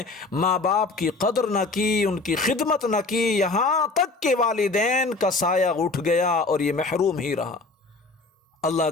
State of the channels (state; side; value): quieter; right; 3.6 dB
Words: ماں باپ کی قدر نہ کی، ان کی خدمت نہ کی، یہاں تک کہ والدین کا سایہ اٹھ گیا اور یہ محروم ہی رہا۔ اللہ